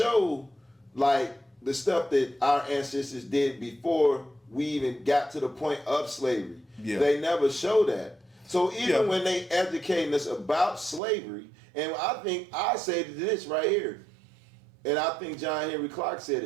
like the stuff that our ancestors did before we even got to the point of slavery. Yeah. They never show that. So even when they educating us about slavery, and I say this right here, and I think John Henry Clark said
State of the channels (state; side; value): drops out; left; at 11.0 s